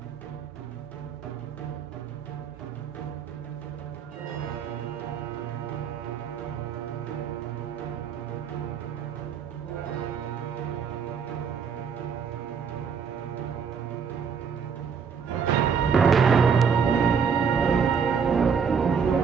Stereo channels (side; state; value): left; quieter; 6.4 dB